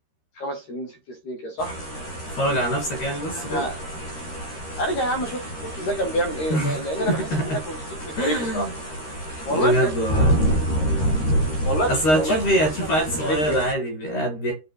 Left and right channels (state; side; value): late; right; 13 ms